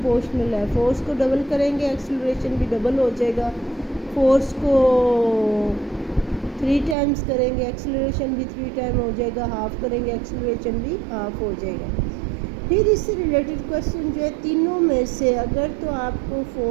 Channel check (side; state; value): left; drops out; at 7.0 s